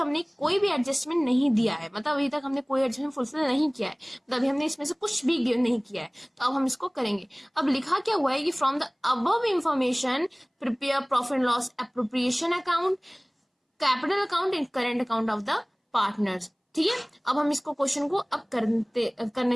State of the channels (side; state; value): both; identical; correlation 1.00